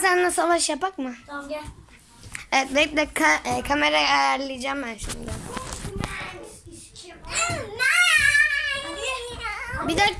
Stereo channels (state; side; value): identical; both; correlation 1.00